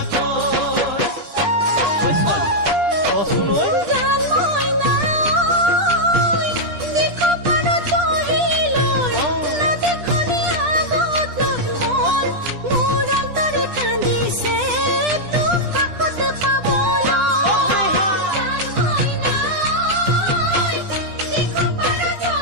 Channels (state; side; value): late; left; 10 ms